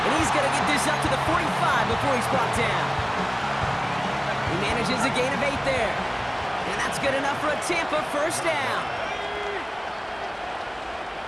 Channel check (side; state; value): both; identical; correlation 1.00